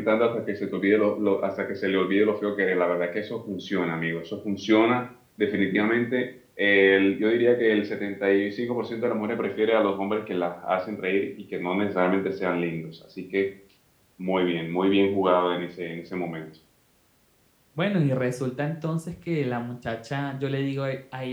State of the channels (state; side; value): identical; both; correlation 1.00